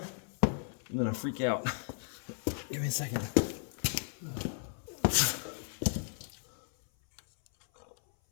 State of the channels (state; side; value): silent; right; 55 dB below the other